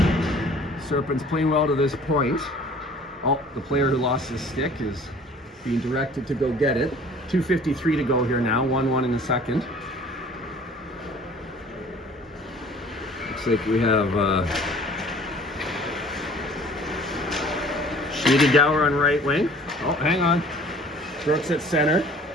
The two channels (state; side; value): normal; both; correlation 0.51